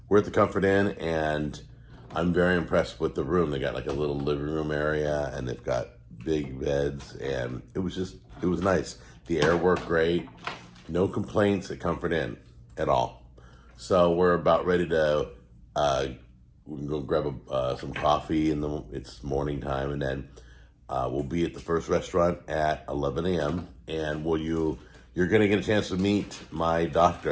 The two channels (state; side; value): identical; both; correlation 1.00